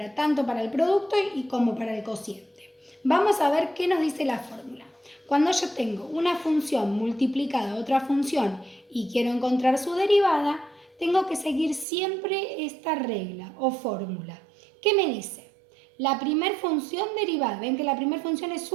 tanto para el producto y como para el cociente. Vamos a ver qué nos dice la fórmula. Cuando yo tengo una función multiplicada a otra función y quiero encontrar su derivada, tengo que seguir siempre esta regla o fórmula. ¿Qué me dice? La primera función derivada, ven que la primera función es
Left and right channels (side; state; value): left; drops out; at 11.9 s